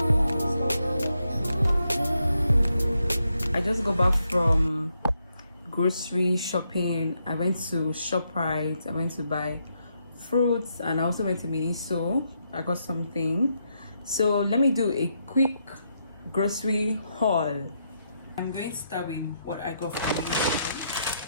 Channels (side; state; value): both; inverted; correlation -0.79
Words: yeah. I just got back from grocery shopping. I went to ShopRite. I went to buy fruits, and I also went to Miniso. I got something. So let me do a quick grocery haul. I'm going to start with what I got from Miniso.